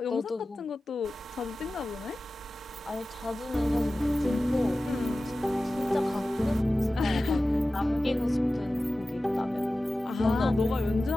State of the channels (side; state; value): both; normal; correlation 0.95